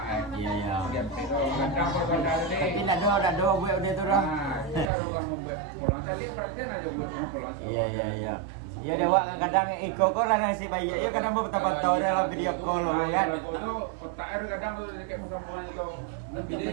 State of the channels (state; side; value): drops out; left; at 4.9 s